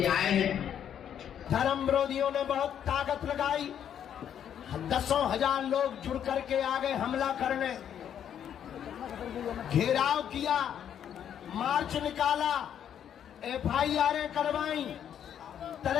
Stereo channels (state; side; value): quieter; right; 9.3 dB